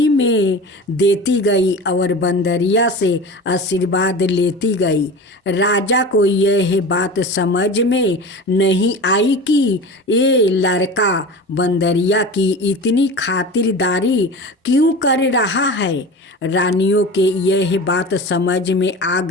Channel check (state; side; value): normal; both; correlation 0.33